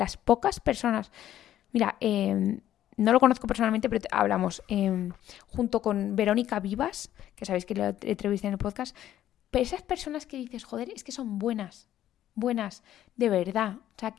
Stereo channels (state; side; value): quieter; right; 12.1 dB